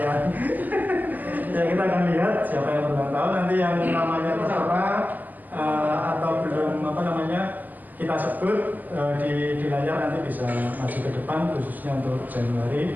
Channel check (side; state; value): left; late; 0.083 ms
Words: Ya, kita akan lihat siapa yang berulang tahun, nanti yang namanya tertera atau belum kita sebut di layar, nanti bisa maju ke depan, khususnya untuk